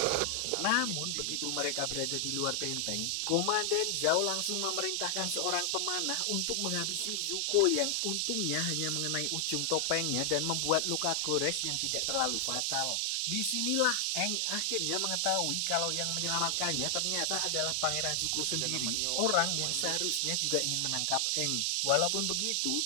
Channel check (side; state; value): both; different; correlation 0.00